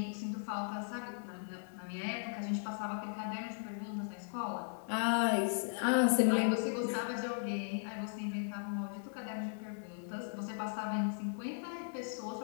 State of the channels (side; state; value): right; silent; 53 dB below the other